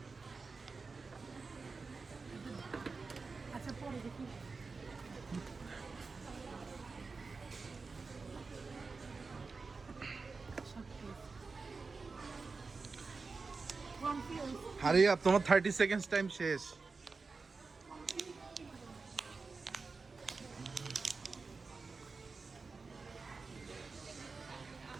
হারি আপ, তোমার 30 সেকেন্ডস টাইম শেষ।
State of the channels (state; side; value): quieter; left; 4.3 dB